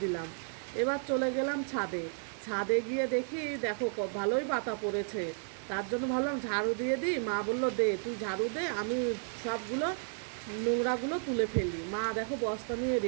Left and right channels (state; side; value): silent; left; 56 dB below the other